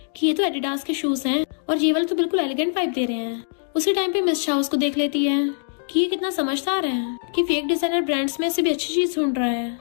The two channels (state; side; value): silent; right; digital silence